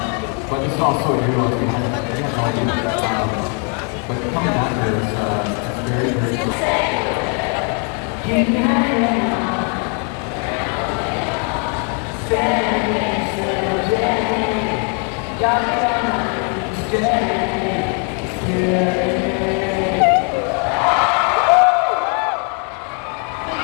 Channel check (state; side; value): quieter; right; 38.9 dB